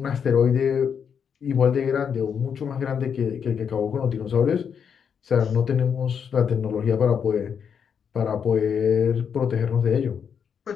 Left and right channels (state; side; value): quieter; right; 7.2 dB